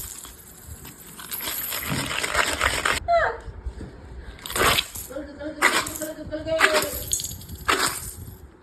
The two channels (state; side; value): identical; both; correlation 1.00